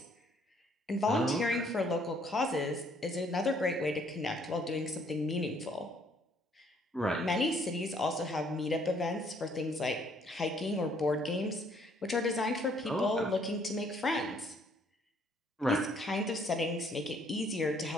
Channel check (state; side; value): normal; both; correlation 0.64